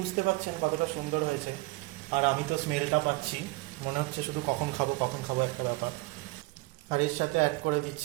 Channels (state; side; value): quieter; left; 22.8 dB